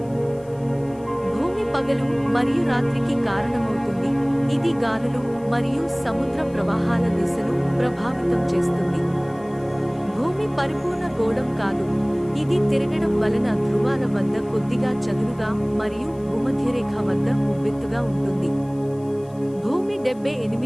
భూమి పగలు మరియు రాత్రికి కారణమవుతుంది. ఇది గాలులు మరియు సముద్ర ప్రవాహాల దిశను ప్రభావితం చేస్తుంది. భూమి పరిపూర్ణ గోళం కాదు, ఇది తిరగడం వలన ధ్రువాల వద్ద కొద్దిగా చదునుగా మరియు భూమధ్యరేఖ వద్ద ఉబ్బెత్తుగా ఉంటుంది. భూమి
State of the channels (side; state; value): left; noise; hiss, 29 dB below the sound